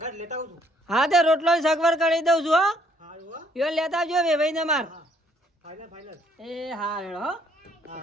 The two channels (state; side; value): normal; both; correlation 0.66